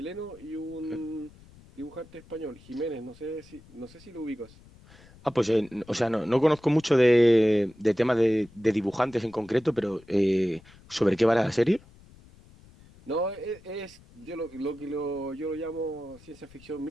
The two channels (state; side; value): noise; left; rumble, 24 dB below the sound